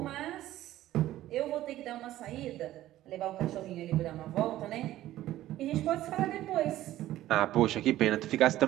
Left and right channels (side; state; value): left; quieter; 14.4 dB